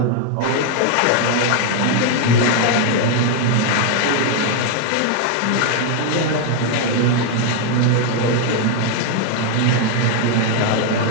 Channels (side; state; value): both; different; correlation 0.00